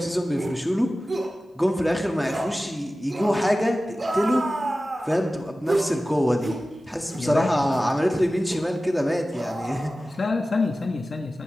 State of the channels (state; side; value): normal; both; correlation 0.96